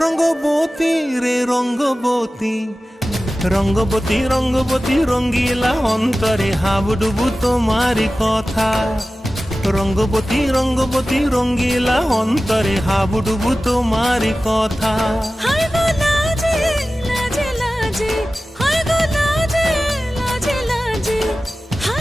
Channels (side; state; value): both; normal; correlation 0.96